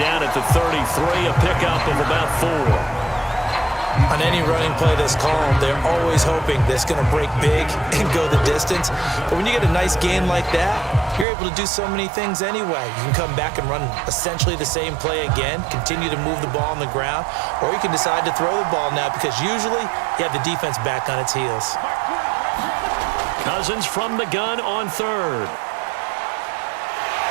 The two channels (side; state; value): left; drops out; at 11.2 s